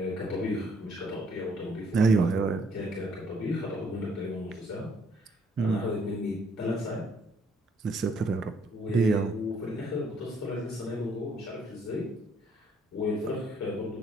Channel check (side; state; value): both; normal; correlation 0.66